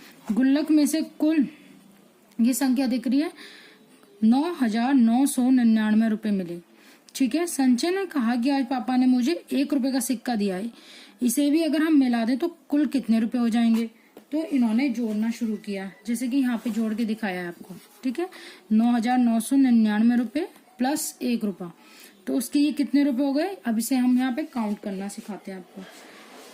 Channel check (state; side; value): identical; both; correlation 1.00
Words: गुल्लक में से कुल ये संख्या दिख रही है 9,999 रुपए मिले। ठीक है, संजय ने कहा कि आज पापा ने मुझे 1 रुपए का सिक्का दिया है, इसे भी अगर हम मिला दें तो कुल कितने रुपए हो जाएंगे? तो इन्होंने जोड़ना शुरू किया, जैसे कि यहाँ पे जोड़ के दिखाया है आपको। ठीक है, 9,999 रुपए प्लस 1 रुपया, तो उसके ये कितने रुपए हो गए? अब इसे हम यहाँ पे काउंट करना सिखाते हैं आपको।